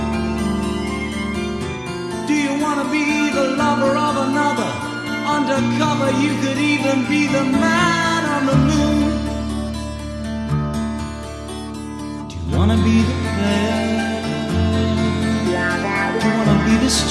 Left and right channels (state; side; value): identical; both; correlation 1.00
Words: Do you wanna be the lover of another? Undercover, you could even be the man on the moon. Do you wanna be the player? Do you wanna be the